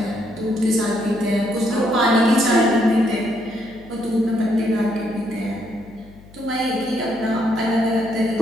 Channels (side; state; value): left; noise; hum, 23 dB below the sound